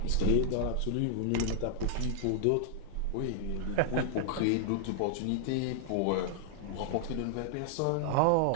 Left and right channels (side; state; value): both; different; correlation 0.00